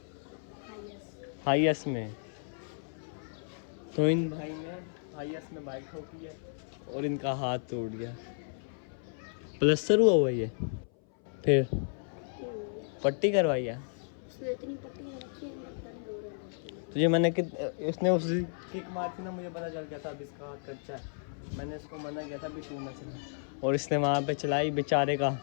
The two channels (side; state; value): right; silent; 56 dB below the other